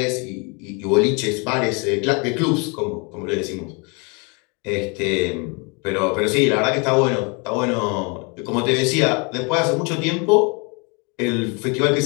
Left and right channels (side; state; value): right; quieter; 32.4 dB